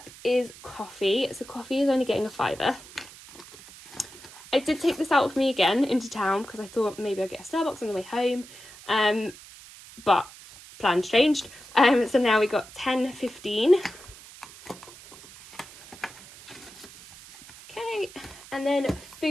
is coffee. So coffee is only getting a £5. I did take this out with me again into town because I thought maybe I'd get a Starbucks on the way home, but plans changed. So now we got 10.15. Okay, and then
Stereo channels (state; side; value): noise; right; hiss, 19 dB below the sound